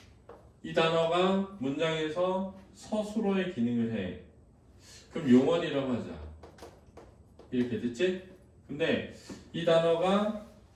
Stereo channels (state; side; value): identical; both; correlation 1.00